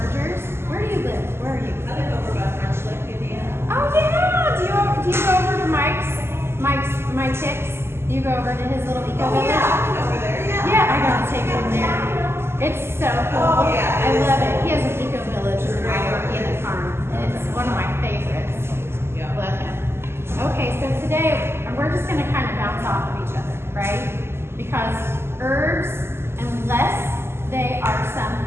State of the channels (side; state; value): left; late; 0.12 ms